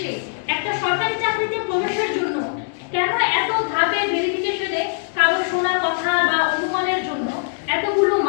একটা সরকারি চাকরিতে প্রবেশের জন্য কেন এত ধাপে ভেরিফিকেশনে কারো শোনা কথা বা অনুমানের জন্য এতগুলো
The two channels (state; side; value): silent; right; digital silence